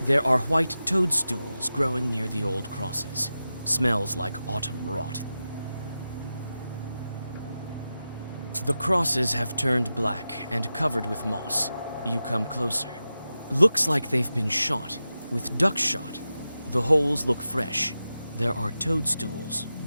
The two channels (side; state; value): both; inverted; correlation -0.92